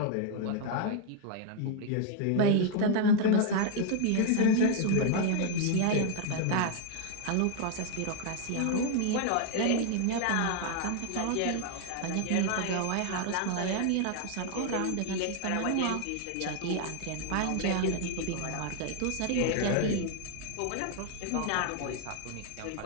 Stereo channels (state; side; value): different; both; correlation 0.00